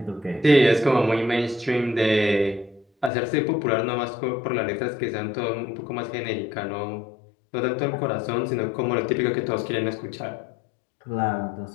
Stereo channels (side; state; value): right; drops out; at 3.1 s